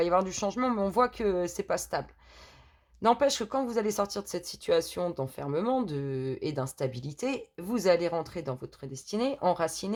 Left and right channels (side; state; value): both; identical; correlation 1.00